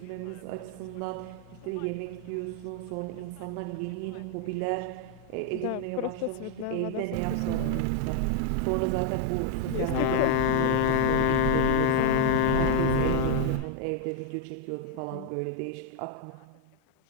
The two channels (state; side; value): different; both; correlation 0.00